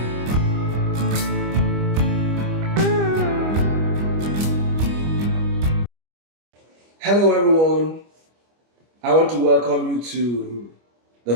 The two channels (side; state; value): left; late; 25 ms